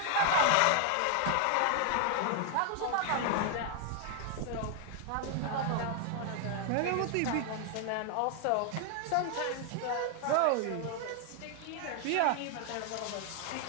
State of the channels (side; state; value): both; different; correlation 0.00